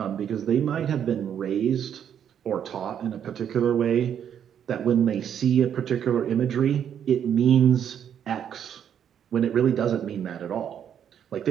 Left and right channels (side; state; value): left; quieter; 8.9 dB